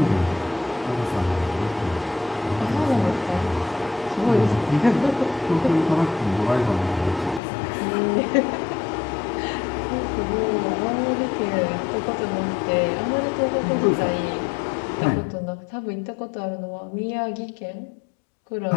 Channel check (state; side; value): drops out; right; at 7.4 s